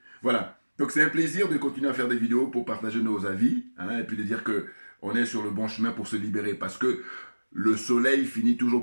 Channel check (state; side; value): inverted; both; correlation -1.00